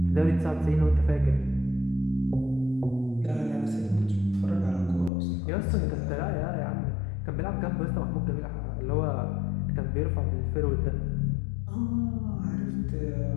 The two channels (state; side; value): drops out; right; at 5.1 s